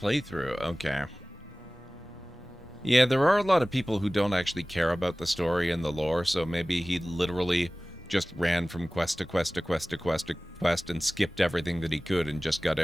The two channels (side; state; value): both; normal; correlation 0.98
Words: okay. Yeah, there are a lot of people who don't actually care about the story and the lore, so maybe he literally just ran from quest to quest to quest to quest to quest and skipped everything that he could and just got